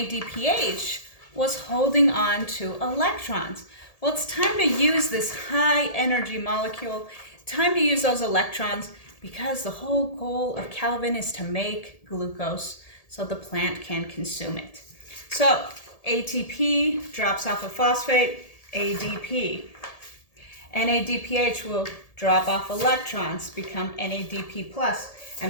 was holding on to electrons? Well, it's time to use this high energy molecule, time to use those electrons, because the whole goal of Calvin is to make glucose so the plant can consume it. So ATP drops off a phosphate, ADP. NADPH will drop off electrons, become NADP+.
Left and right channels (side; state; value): right; late; 1.8 ms